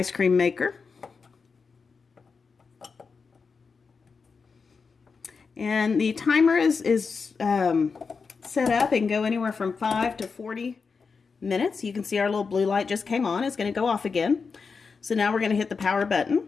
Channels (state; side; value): quieter; right; 5.1 dB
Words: cream maker. And the timer is set up and go anywhere from 5 to 40 minutes. You can see our little blue light just came on. It's going to go off again. So now we're going to hit the power button.